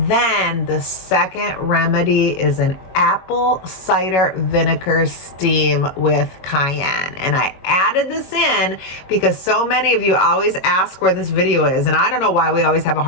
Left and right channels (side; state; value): right; late; 22 ms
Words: then the second remedy is an apple cider vinegar steam with cayenne. And I added this in because so many of you always ask where this video is, and I don't know why we always have a